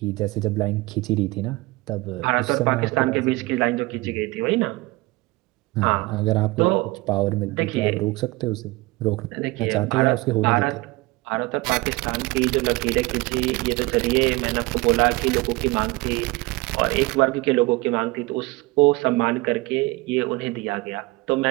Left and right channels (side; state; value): left; quieter; 22.0 dB